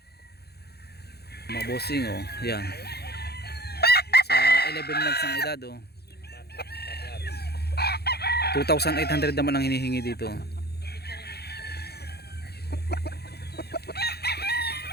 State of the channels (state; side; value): late; right; 0.47 ms